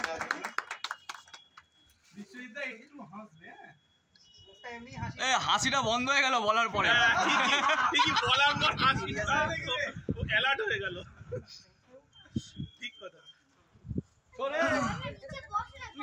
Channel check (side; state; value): both; identical; correlation 1.00